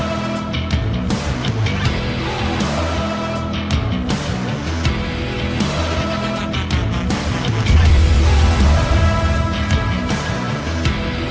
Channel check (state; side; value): identical; both; correlation 1.00